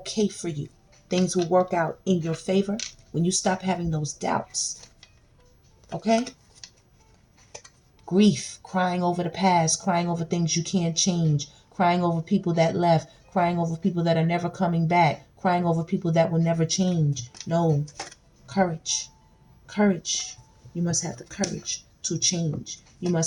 for you. Things will work out in your favor when you stop having those doubts. Okay? Grief, crying over the past, crying over things you can't change, crying over people that left, crying over people that are never coming back, crying over people that will never change. No. Courage. Courage. You must have the courage to change. You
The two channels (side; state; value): both; identical; correlation 1.00